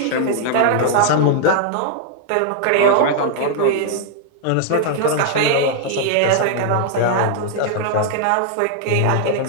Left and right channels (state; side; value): different; both; correlation -0.01